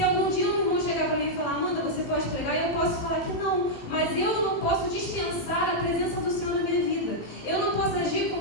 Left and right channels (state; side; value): late; right; 18 ms